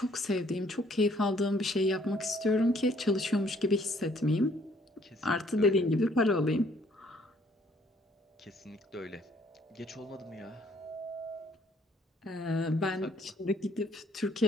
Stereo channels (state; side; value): normal; both; correlation 0.63